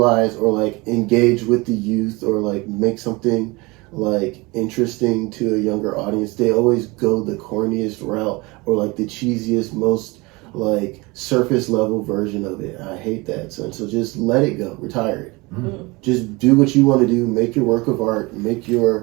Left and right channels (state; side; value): quieter; left; 24.6 dB